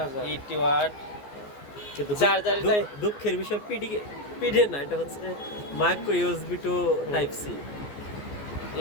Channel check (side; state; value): right; late; 14 ms